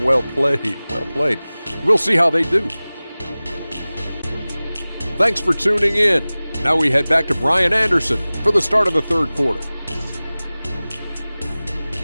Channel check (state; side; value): inverted; both; correlation -0.98